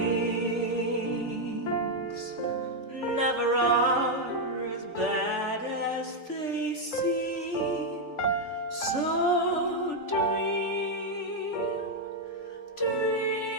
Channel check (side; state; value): right; late; 3.4 ms